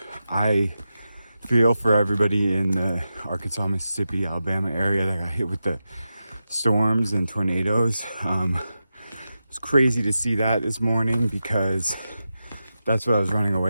I feel for everybody in the Arkansas, Mississippi, Alabama area that got hit with the storms and tornadoes. It's crazy to see that this morning because that's what I was running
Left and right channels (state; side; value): inverted; both; correlation -0.90